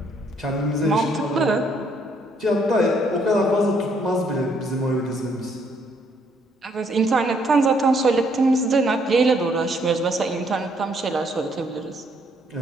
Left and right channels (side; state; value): both; normal; correlation 0.69